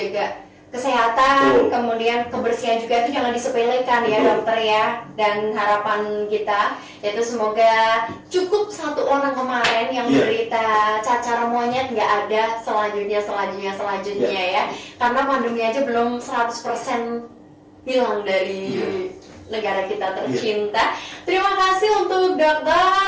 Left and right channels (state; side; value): identical; both; correlation 1.00